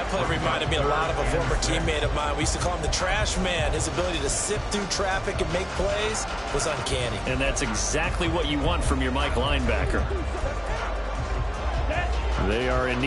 play reminded me a lot of a former teammate of mine. We used to call him the trash man. His ability to sift through traffic and make plays was uncanny. And that's exactly what you want from your Mike linebacker. They are in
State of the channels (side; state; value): both; identical; correlation 1.00